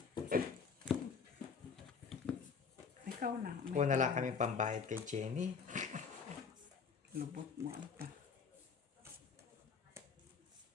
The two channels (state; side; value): quieter; right; 5.7 dB